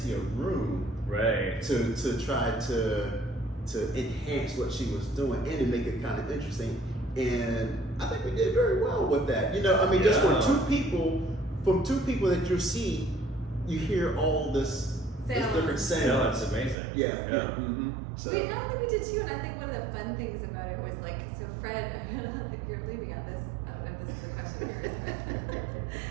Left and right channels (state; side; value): drops out; left; at 16.8 s